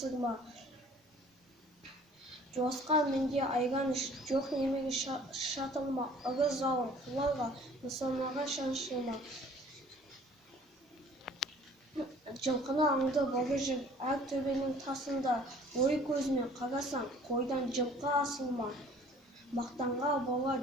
Жуасқан менде айран іш, жоқ немере шатылма, ыры залым құларға, нысанаға шаншылма. Жылқыны аңды бары жүр, әр төбенің тасында, ой көзімен қарасаң, қойдан жылқы асылма. Мақтанға бола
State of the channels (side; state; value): both; normal; correlation 0.52